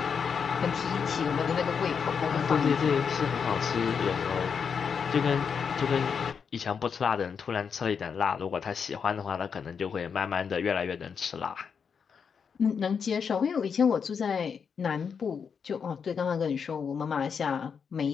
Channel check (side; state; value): right; quieter; 6.5 dB